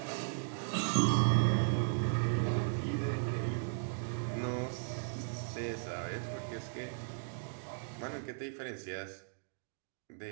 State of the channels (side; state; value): left; silent; digital silence